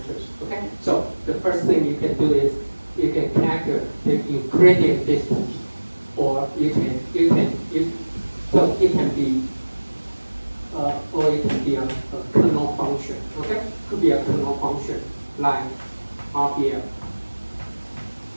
Okay, so the first thing you can do is you can calculate the Euclidean distance, or so it can be or it can be a kernel function. Okay, could be a kernel function like RPM.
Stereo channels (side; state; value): both; inverted; correlation -1.00